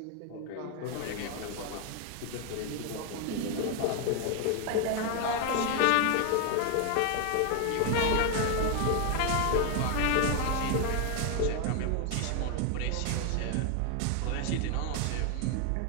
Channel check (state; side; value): different; both; correlation 0.00